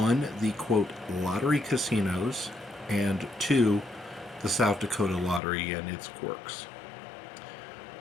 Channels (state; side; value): drops out; right; at 5.4 s